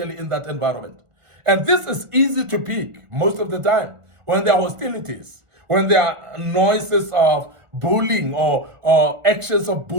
in that environment. And this is easy to pick most of the time when there are hostilities, when there are noises of bullying or actions of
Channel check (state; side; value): late; left; 1.4 ms